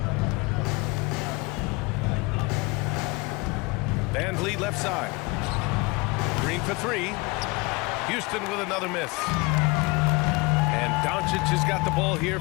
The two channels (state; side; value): quieter; right; 26.3 dB